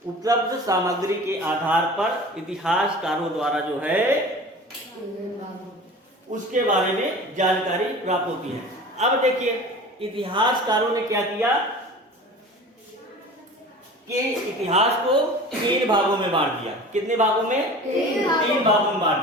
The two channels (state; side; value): normal; both; correlation 0.39